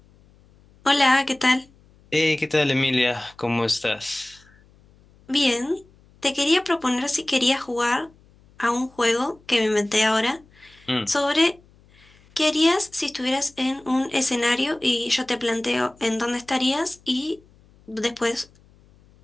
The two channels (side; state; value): left; noise; hum, 29 dB below the sound